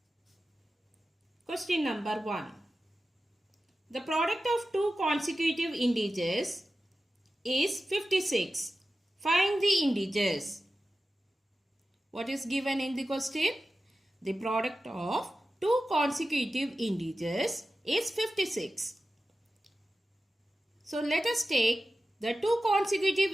Question number 1. The product of two consecutive integers is 56. Find the integers. What is given in the question? The product of two consecutive integers is 56. So let us take the two consecutive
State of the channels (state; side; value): normal; both; correlation 0.94